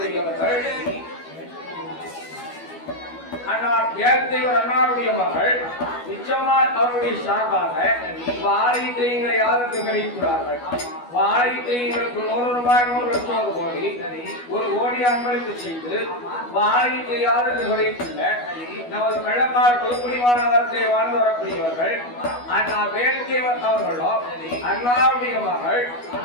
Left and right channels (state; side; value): late; right; 12 ms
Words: அன்னார் ஏழ்தேவர் அன்னாருடைய மகள் நிச்சயமார் அவருடைய சார்பாக வாழைத்து எங்களை யாருக்கு கிடைக்கிறார்கள் வாழைத்து எங்களுக்கு 100 ரூபாய் 100 லட்சம் கோடி ஒரு கோடி அன்பளிப்பு செய்து வாழைத்து யாருக்கு கிடைத்துள்ள நமது வெள்ளக்கார் குருகுரிவான நகரத்தை வாழ்ந்து வரக்கூடியவர்கள் அண்ணா வேல்தேவர் அவர்களோ அண்ணாவுடைய மகள்